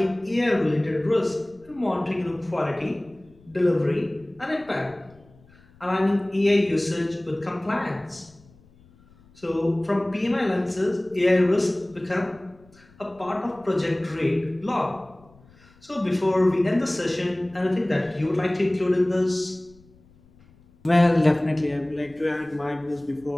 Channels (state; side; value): noise; left; rumble, 28 dB below the sound